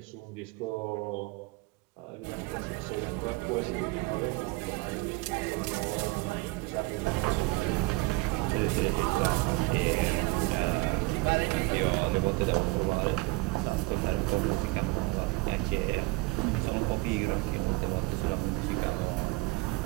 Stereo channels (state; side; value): quieter; left; 24.2 dB